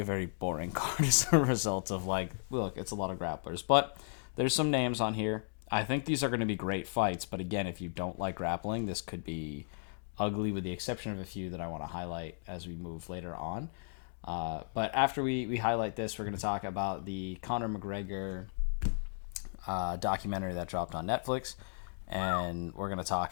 a very boring card as a result of, look, it's a lot of grapplers. But there's some names on here. I think these are going to be great fights. But again, if you don't like grappling, this could be ugly with the exception of a few that I want to highlight as we move later on. But after we highlight this, we're going to talk about the Conor McGregor documentary that dropped on Netflix, and we're going to talk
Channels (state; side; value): silent; right; digital silence